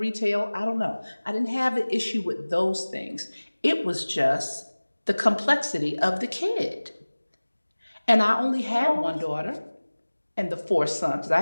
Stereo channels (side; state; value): both; inverted; correlation -1.00